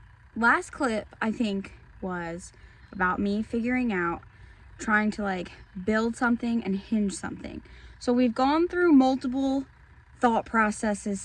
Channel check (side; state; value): both; identical; correlation 1.00